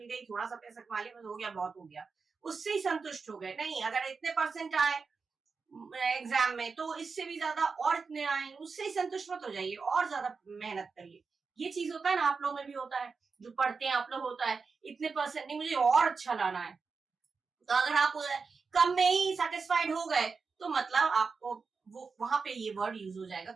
गई, थोड़ा सा पैसा कमा लिया, बस हो गया, बहुत हो गया, उससे ही संतुष्ट हो गए। नहीं, अगर इतने परसेंट आए एग्जाम में तो इससे भी ज्यादा और इतने आए, उससे ही संतुष्ट मत हो जाइए, और ज्यादा मेहनत करिए। ये चीज होता है ना, आप लोगों में भी होता है, जो पढ़ते हैं आप लोग होता है, इतने परसेंट नहीं, मुझे और अच्छा लाना है, तो अगर आप कम में ही सेटिस्फाइड हो गए तो मतलब आपको वो वहां पे ये वर्ड यूज हो जाएगा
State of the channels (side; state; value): left; quieter; 4.9 dB